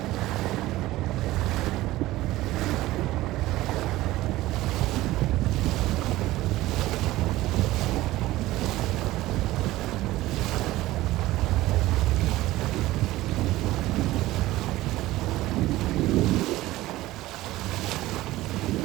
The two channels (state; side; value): quieter; left; 17.1 dB